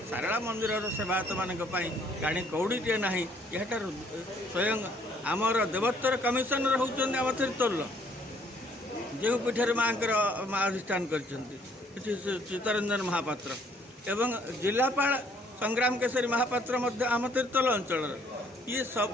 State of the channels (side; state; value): both; normal; correlation 0.64